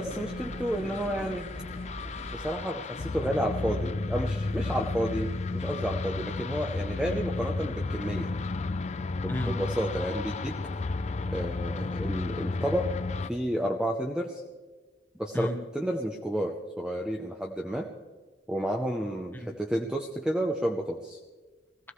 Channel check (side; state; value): both; normal; correlation 0.81